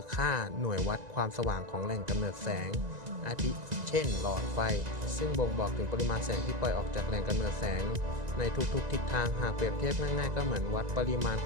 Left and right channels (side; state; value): left; late; 1.9 ms